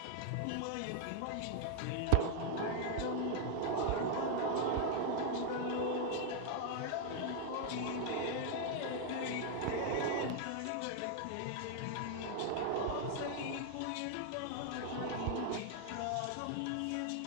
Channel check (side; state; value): both; different; correlation 0.00